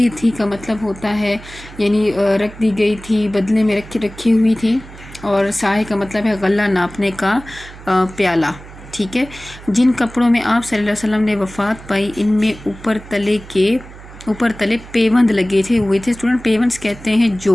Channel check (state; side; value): noise; right; hum, 17 dB below the sound